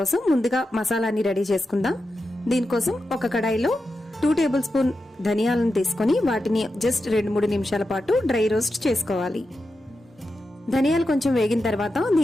ముందుగా మసాలాని రెడీ చేసుకుందాం. దీనికోసం ఒక కడాయిలో 2 టేబుల్ స్పూన్ ధనియాలను తీసుకొని వాటిని జస్ట్ 2-3 నిమిషాల పాటు డ్రై రోస్ట్ చేసుకోవాలి. ధనియాలు కొంచెం వేగిన తర్వాత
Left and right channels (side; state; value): both; normal; correlation 0.90